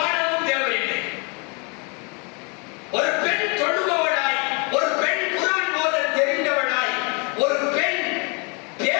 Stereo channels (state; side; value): quieter; right; 32.8 dB